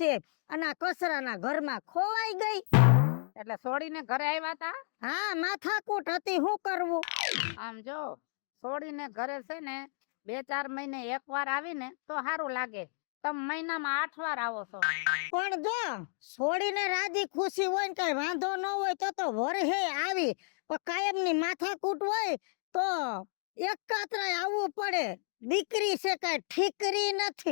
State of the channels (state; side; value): silent; right; digital silence